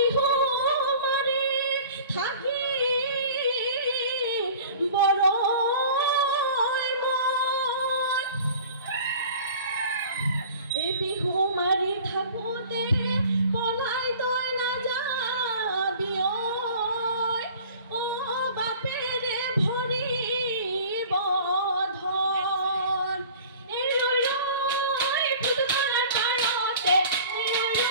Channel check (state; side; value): inverted; both; correlation -0.45